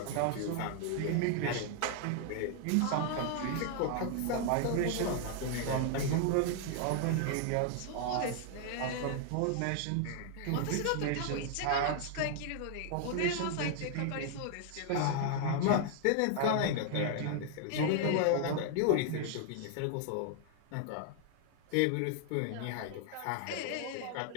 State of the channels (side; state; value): both; different; correlation 0.00